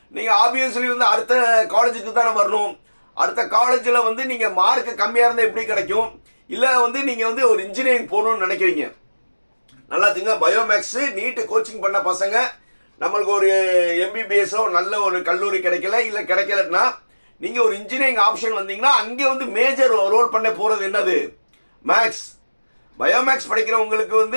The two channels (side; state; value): both; inverted; correlation -1.00